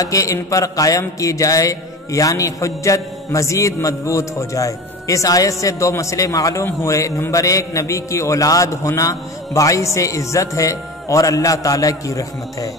ان پر قائم کی جائے، یعنی حجت مزید مضبوط ہو جائے۔ اس آیت سے دو مسئلے معلوم ہوئے۔ نمبر ایک، نبی کی اولاد ہونا باعث عزت ہے اور اللہ تعالیٰ کی رحمت ہے۔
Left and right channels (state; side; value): normal; both; correlation 0.32